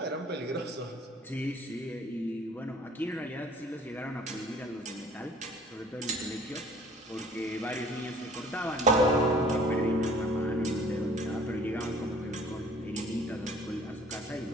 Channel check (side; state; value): both; normal; correlation 0.53